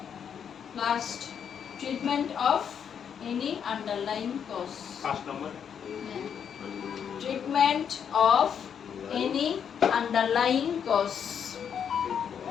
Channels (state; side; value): quieter; right; 7.8 dB